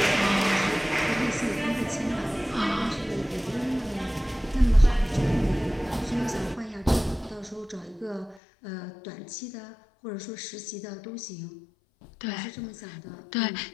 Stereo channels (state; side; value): drops out; right; at 8.4 s